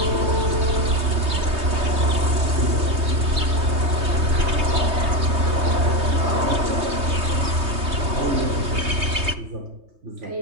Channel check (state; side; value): late; left; 3.2 ms